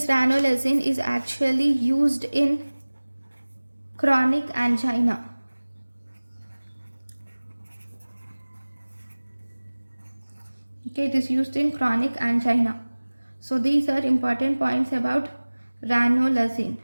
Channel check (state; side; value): inverted; both; correlation -1.00